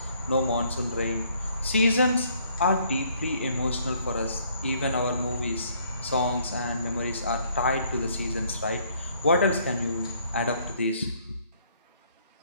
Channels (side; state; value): both; inverted; correlation -0.65